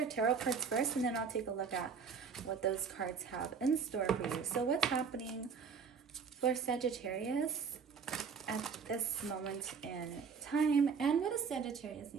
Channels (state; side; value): quieter; left; 5.9 dB